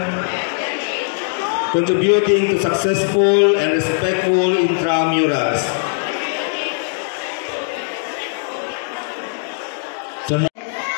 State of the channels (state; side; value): silent; right; digital silence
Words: contributing to successful and respectful intramurals.